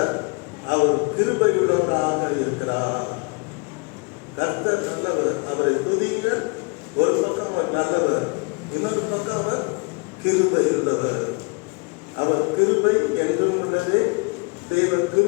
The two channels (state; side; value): quieter; right; 31.0 dB